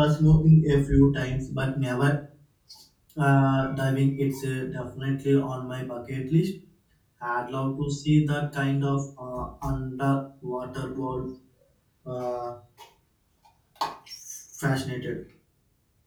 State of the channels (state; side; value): identical; both; correlation 1.00